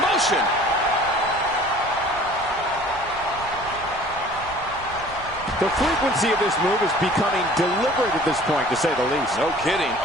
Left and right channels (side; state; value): right; noise; rumble, 17 dB below the sound